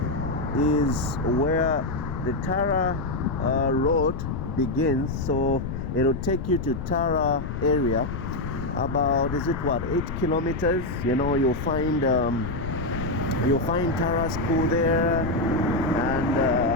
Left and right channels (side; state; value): left; noise; rumble, 5 dB below the sound